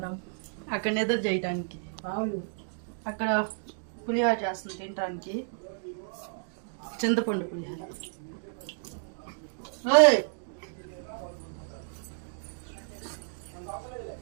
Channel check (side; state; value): left; silent; digital silence